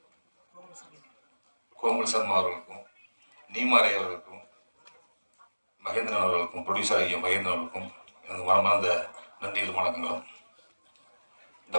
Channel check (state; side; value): inverted; both; correlation -1.00